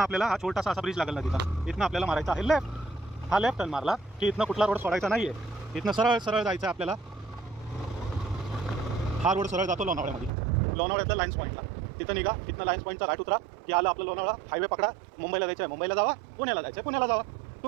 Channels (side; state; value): left; drops out; at 10.3 s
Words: आपल्याला हा छोटासा असा ब्रिज लागेल ना तिथं, इथनं आपल्याला मारायचा आहे लेफ्ट. हा लेफ्ट टर्न मारला की इथनं कुठला रोड सोडायचा नाही आहे, इथनं सरळ सरळ जायचं आहे आपल्याला. हा रोड सरळ जातो लोणावळ्यामध्ये, लोणावळ्यातल्या लाईन्स पॉईंटला. तिथं निघा, तिथनं लाईन्स पॉईंटचा राईट उतरा की आलं आपलं लोणावळा. हायवे पकडा, मुंबईला जायचं आहे मुंबईला जावा, पुण्याला जायचं आहे पुण्याला जावा,